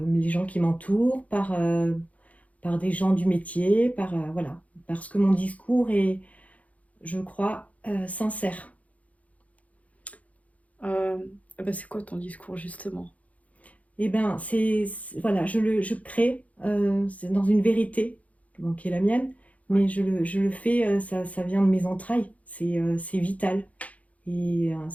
les gens qui m'entourent, par des gens du métier, voilà, parce que mon discours est, je crois, sincère. Euh, c'est quoi ton discours justement? Eh bien, voilà, je crée, c'est dans une vérité, bon, qui est la mienne, mais je le fais, ça vient de mes entrailles, c'est vital. Et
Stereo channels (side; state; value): right; late; 0.068 ms